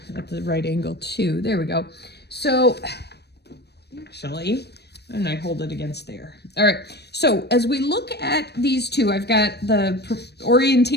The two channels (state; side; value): late; right; 0.48 ms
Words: at the right angle too. There we go. So actually, and I hold it against there. All right, so as we look at these two, I've got the